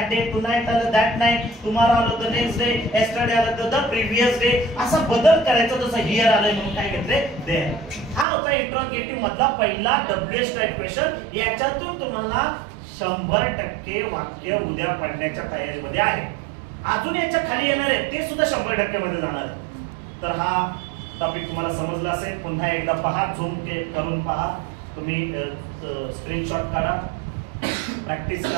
डे, टुनाइट आलं दॅट नाईट, टुमारो आलं द नेक्स्ट डे, येस्टरडे आलं द प्रिव्हियस डे. असा बदल करायचा. जसं हिअर आलंय म्हणून काय घेतले देअर. हा होता इंट्रोगेटिव्ह मधला पहिला WH टाइप क्वेश्चन. याच्यातून तुम्हाला 100% वाक्य उद्या पडण्याच्या तयारीमध्ये आहे. अजून याच्या खाली येणार आहे ते सुद्धा 100% मध्ये जाणार आहे. तर हा टॉपिक तुम्हाला समजला असेल. पुन्हा एकदा पहा, झूम करून पहा, तुम्ही स्क्रीनशॉट काढा, प्रॅक्टिस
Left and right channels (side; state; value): left; drops out; at 8.2 s